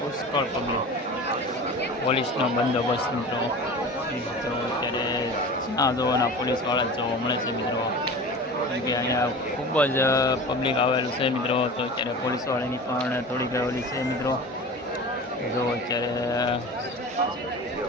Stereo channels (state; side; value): normal; both; correlation 0.35